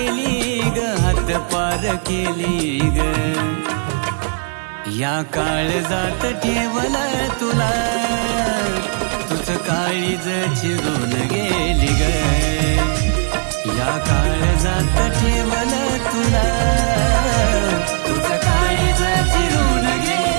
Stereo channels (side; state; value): left; silent; 56 dB below the other